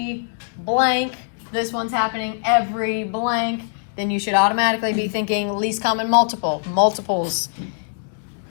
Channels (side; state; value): right; silent; digital silence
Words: blank, this one's happening every blank, then you should automatically be thinking least common multiple, multiples.